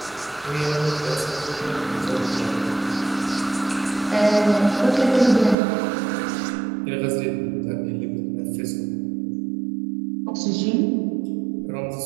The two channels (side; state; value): left; drops out; at 5.6 s